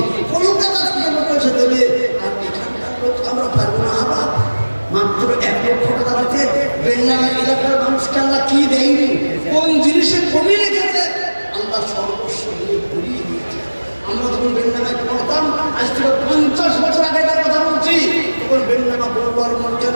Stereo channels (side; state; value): both; inverted; correlation -1.00